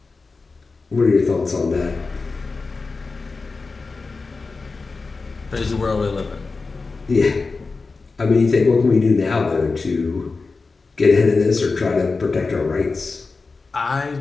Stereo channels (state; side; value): quieter; right; 4.1 dB